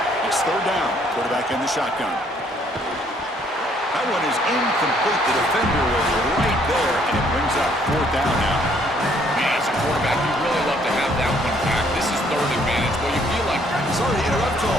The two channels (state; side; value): normal; both; correlation 0.65